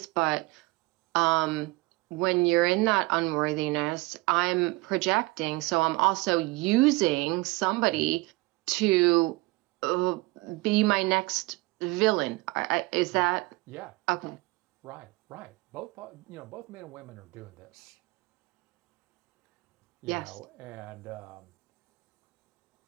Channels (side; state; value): left; quieter; 22.9 dB